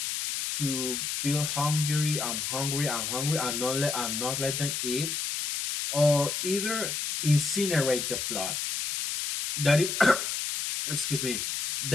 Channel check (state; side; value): noise; left; hiss, 2 dB below the sound